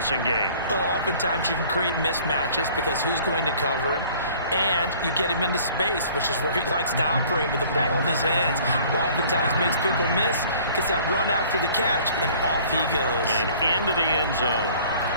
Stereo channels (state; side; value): inverted; both; correlation -0.52